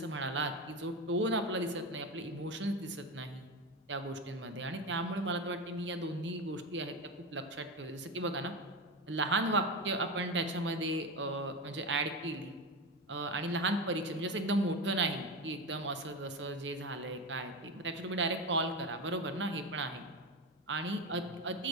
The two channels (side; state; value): both; normal; correlation 0.19